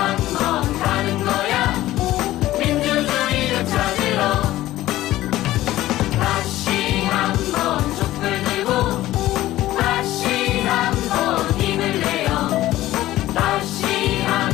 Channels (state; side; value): quieter; right; 15.4 dB